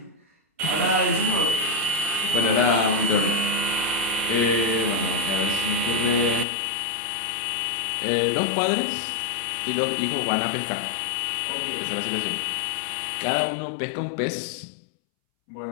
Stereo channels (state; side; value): drops out; right; at 6.5 s